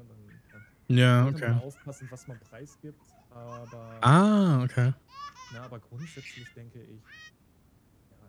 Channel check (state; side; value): identical; both; correlation 1.00